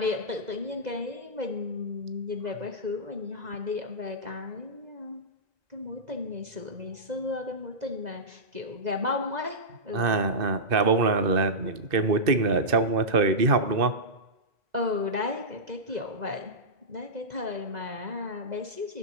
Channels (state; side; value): late; left; 2.0 ms